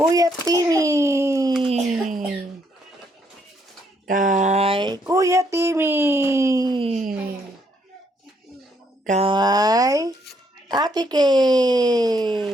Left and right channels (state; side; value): normal; both; correlation 0.72